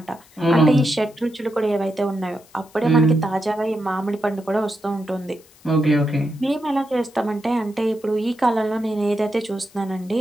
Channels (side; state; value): left; noise; hiss, 27 dB below the sound